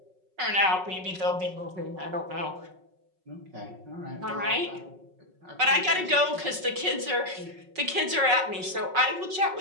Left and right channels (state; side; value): late; left; 5.4 ms